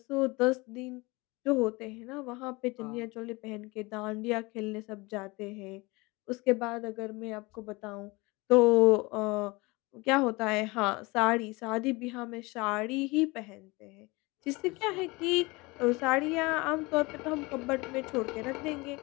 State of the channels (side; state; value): right; quieter; 24.2 dB